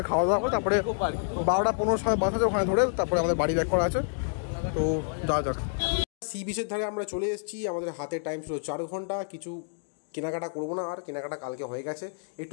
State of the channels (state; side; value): silent; right; digital silence